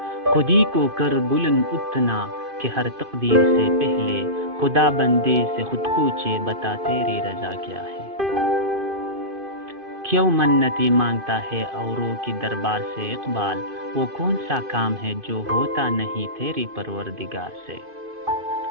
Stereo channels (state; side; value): late; left; 2.5 ms